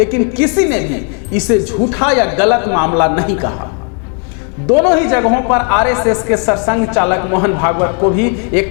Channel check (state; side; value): quieter; right; 39.9 dB